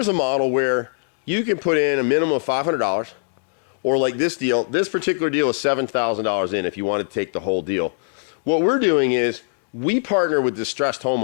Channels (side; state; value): right; silent; digital silence